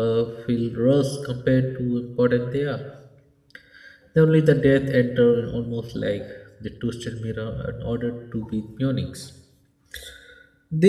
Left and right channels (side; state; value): both; identical; correlation 1.00